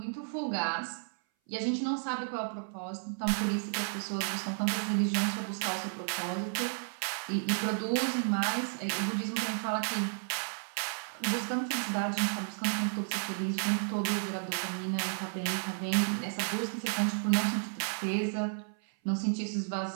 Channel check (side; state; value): left; silent; 56 dB below the other